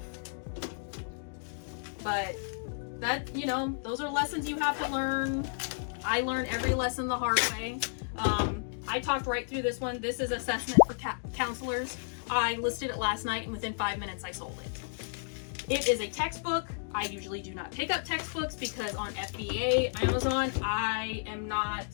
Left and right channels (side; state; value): right; silent; digital silence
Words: But that, you know, those are lessons you have to learn. I learn every lesson the hard way. I talked right through this one. This is assessment for counselors. I listed it last night, and within 5 minutes I sold it. It is a textbook. I usually do not pick up textbooks because on FBA, Amazon, I am not